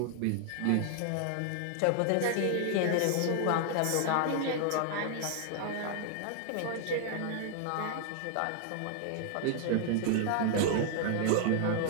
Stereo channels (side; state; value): both; different; correlation 0.00